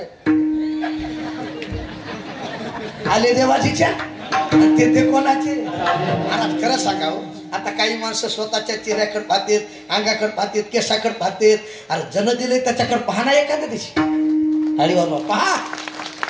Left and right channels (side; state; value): both; identical; correlation 1.00